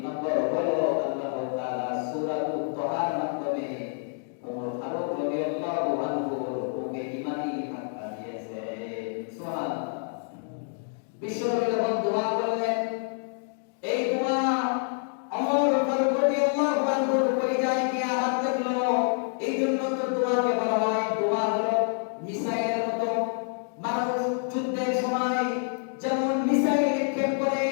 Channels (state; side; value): silent; right; 60 dB below the other